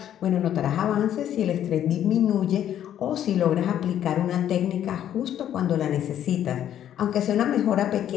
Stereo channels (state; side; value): quieter; right; 10.7 dB